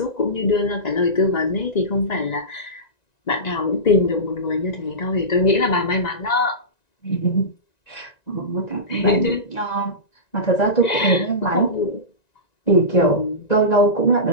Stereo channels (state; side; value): late; right; 1.9 ms